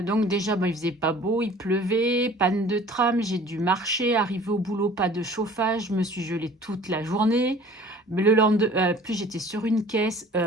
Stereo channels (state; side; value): normal; both; correlation 0.48